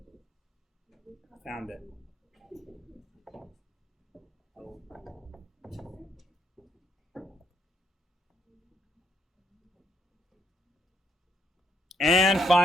Found it. And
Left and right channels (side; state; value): both; normal; correlation 0.73